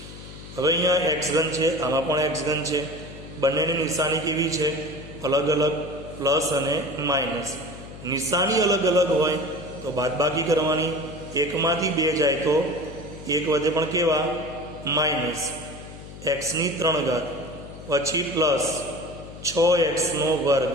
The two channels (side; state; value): left; noise; hum, 14 dB below the sound